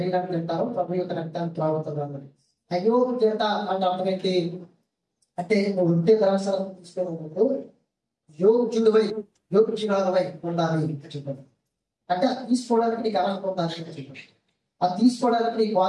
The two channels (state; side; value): identical; both; correlation 1.00